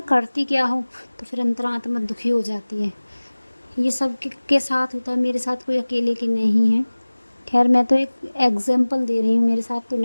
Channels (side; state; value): both; inverted; correlation -1.00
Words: करती क्या हो, तो फिर अंतरात्मा दुखी हो जाती है। ये सब के साथ होता है, मेरे साथ कोई अकेले की नहीं है। खैर मैं तो एक एग्ज़ाम्पल दे रही हूँ, मेरे साथ तो